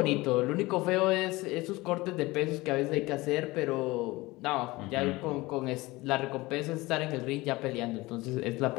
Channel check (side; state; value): right; quieter; 20.9 dB